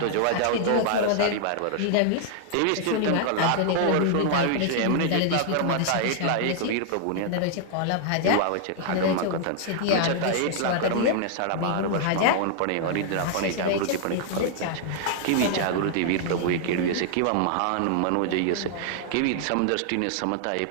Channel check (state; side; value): different; both; correlation -0.01